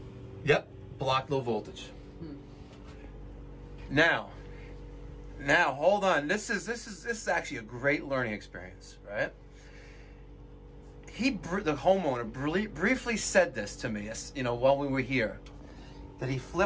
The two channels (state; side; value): identical; both; correlation 1.00